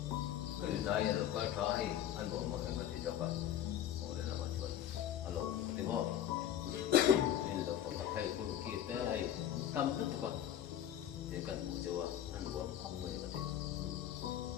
cái này là coi thấy anh bộ mà anh có thể cho bạn ngồi để làm mà chuẩn alo có tiếng không nên là phải thầy cô kia tới hay tâm rất là con để cần một chỗ ăn uống không phải có thể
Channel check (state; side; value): quieter; right; 10.9 dB